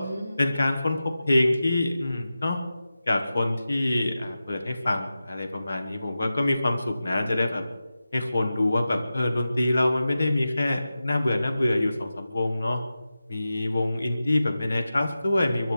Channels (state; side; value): inverted; both; correlation -0.93